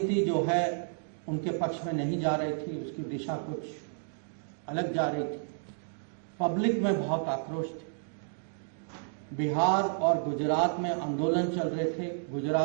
जो है उनके पक्ष में नहीं जा रही थी, उसकी दिशा कुछ अलग जा रही थी। पब्लिक में बहुत आक्रोश थी। बिहार और गुजरात में आंदोलन चल रहे थे,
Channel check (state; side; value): silent; left; digital silence